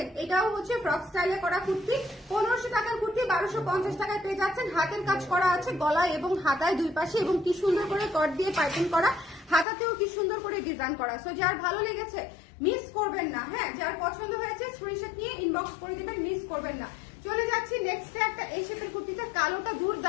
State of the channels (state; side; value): drops out; right; at 9.7 s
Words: এটাও হচ্ছে ফ্রক স্টাইলে করা কুর্তি, 1500 টাকার কুর্তি 1250 টাকায় পেয়ে যাচ্ছেন। হাতের কাজ করা আছে গলায় এবং হাতায় দুই পাশে, এবং কি সুন্দর করে কট দিয়ে পাইপিং করা, হাতাতেও কি সুন্দর করে ডিজাইন করা। সো যার ভালো লেগেছে মিস করবেন না। হ্যাঁ, যার পছন্দ হয়েছে স্ক্রিনশট নিয়ে ইনবক্স করে দিবেন, মিস করবেন না। চলে যাচ্ছি নেক্সট একটা এই শেপের কুর্তিটা। কালোটা